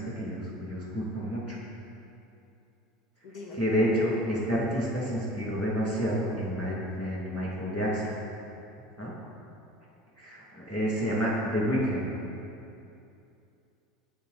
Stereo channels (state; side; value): normal; both; correlation 0.47